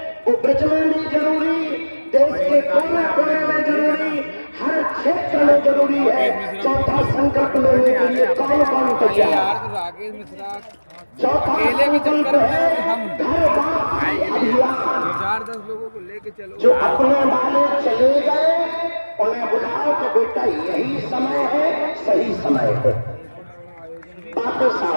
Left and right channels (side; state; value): both; inverted; correlation -1.00